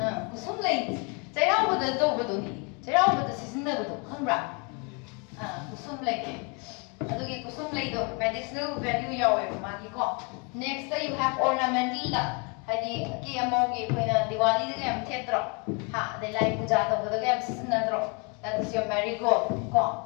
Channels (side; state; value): right; quieter; 33.3 dB